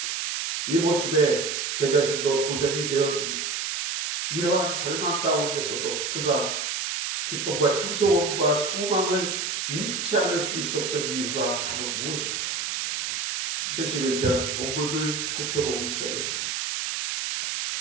이 모습에 제 자신도 도전이 되었습니다. 이러한 절망 가운데서도 그가 기쁨과 찬송과 소망을 잃지 않을 수 있었던 이유가 바로 무엇인가? 71편 본문을 살펴보기 시작했습니다.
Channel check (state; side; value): noise; right; hiss, 2 dB below the sound